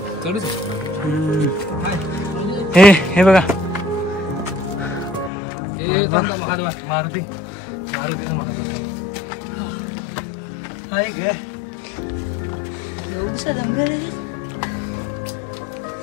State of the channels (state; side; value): drops out; right; at 5.3 s